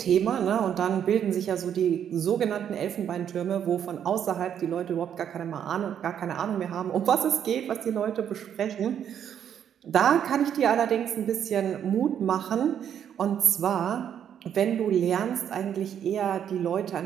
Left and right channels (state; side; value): quieter; left; 9.1 dB